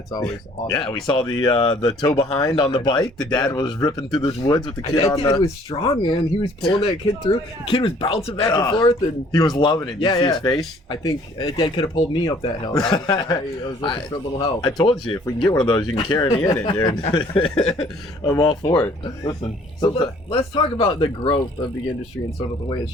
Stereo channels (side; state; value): both; normal; correlation 0.57